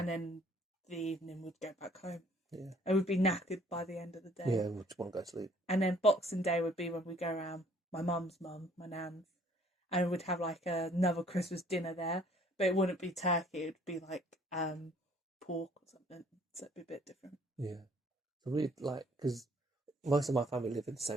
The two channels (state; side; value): normal; both; correlation 0.59